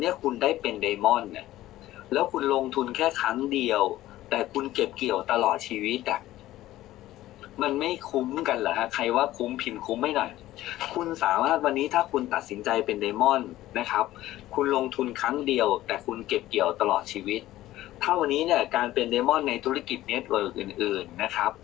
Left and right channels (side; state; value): right; quieter; 15.2 dB